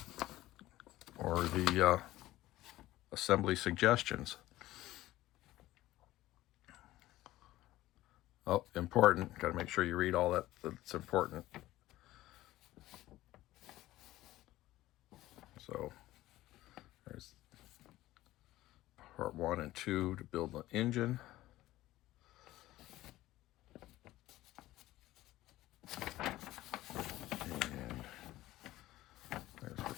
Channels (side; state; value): right; quieter; 16.1 dB